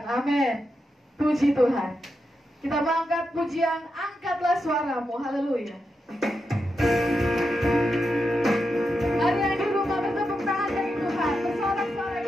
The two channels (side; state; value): both; normal; correlation 0.87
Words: Amin. Puji Tuhan. Kita mengangkat pujian, angkatlah suaramu. Haleluya. Mari yang di rumah bertepuk tangan bagi Tuhan. Bersorak-sorai